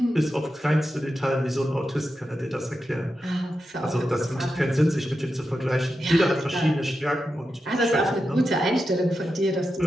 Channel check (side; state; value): both; normal; correlation 0.89